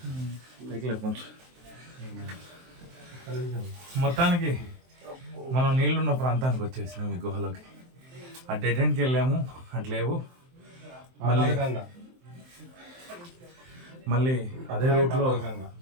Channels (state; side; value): late; left; 23 ms